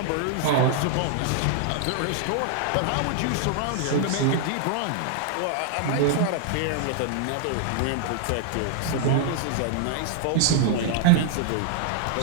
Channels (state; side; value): different; both; correlation 0.00